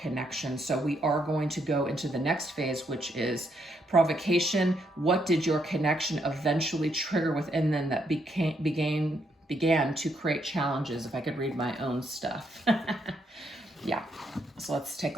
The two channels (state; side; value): normal; both; correlation 0.76